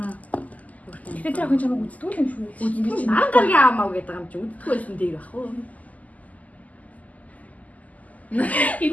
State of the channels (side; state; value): right; late; 0.075 ms